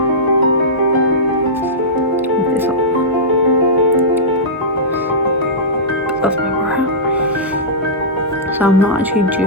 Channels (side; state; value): both; normal; correlation -0.15